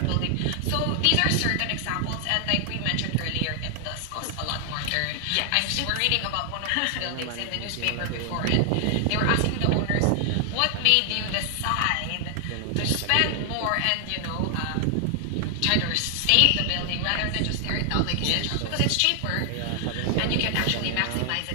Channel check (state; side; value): different; both; correlation 0.00